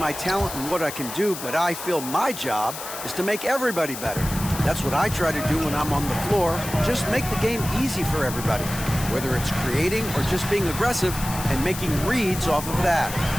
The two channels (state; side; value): noise; left; hiss, 9 dB below the sound